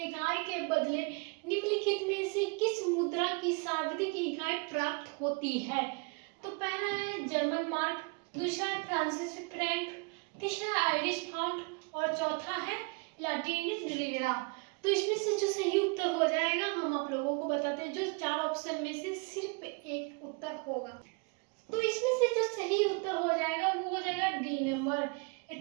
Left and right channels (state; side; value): quieter; left; 32.4 dB